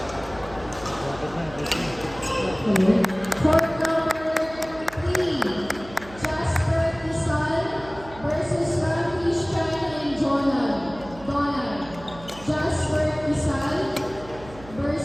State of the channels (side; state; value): right; noise; hum, 18 dB below the sound